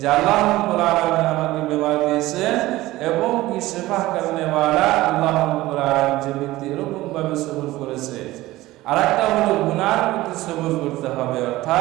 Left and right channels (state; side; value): quieter; left; 17.6 dB